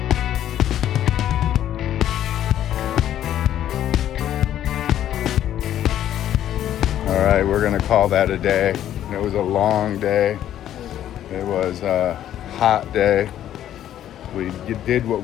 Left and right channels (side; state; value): right; quieter; 11.4 dB